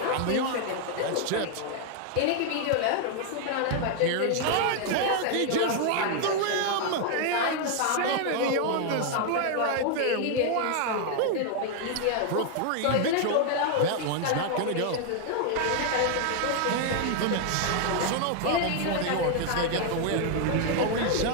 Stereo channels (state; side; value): different; both; correlation 0.00